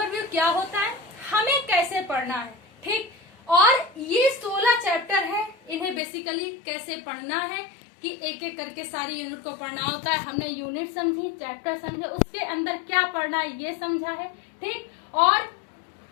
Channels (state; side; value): drops out; right; at 6.0 s